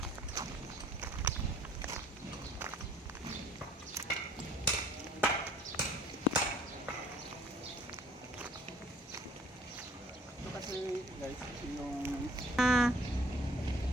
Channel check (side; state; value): both; normal; correlation 0.56